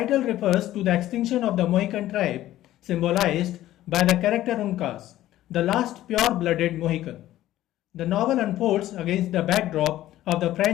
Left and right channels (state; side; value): quieter; right; 14.2 dB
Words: refers to the extinction of the Mohican tribe, symbolized by the character Uncas, the last pure-blooded Mohican. The novel unfolds against the backdrop of the